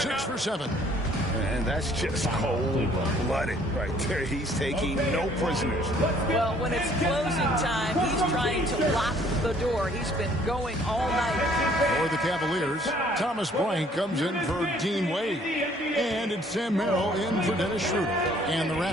for 7. And that's just cold-blooded right there. He's taking no prisoners. Well, when it's closing time, he's trying to lock the door. He's been going all night. For the Cavaliers, Thomas Bryant comes in for Dean Wade. And it's Sam Merrill in for Dennis Schroeder. And the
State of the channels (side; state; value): both; normal; correlation 0.60